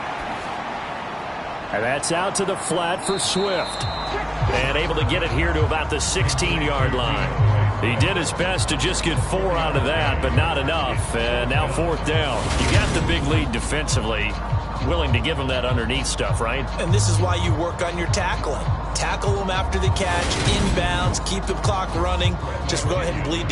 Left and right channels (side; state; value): both; identical; correlation 1.00